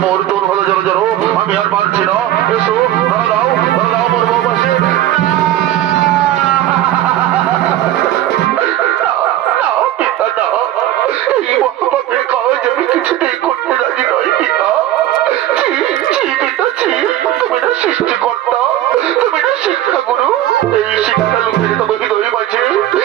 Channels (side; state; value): left; quieter; 13.3 dB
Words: মোর তোর হলো জড়ো জড়ো, আমি আর পারছি না। এসো ধরা দাও মোর বউবাসী। এই মহাপাপের কাজ আমি কিছুতেই করতে রাজি নই পিতা। তুমি না সৃষ্টিকর্তা, তুমি না শিক্ষাগুরু। এই শিক্ষা লোকের তবে হৃদয় মাঝে,